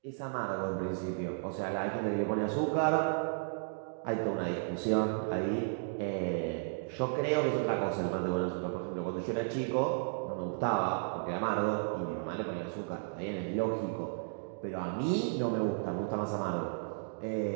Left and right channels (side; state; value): left; silent; digital silence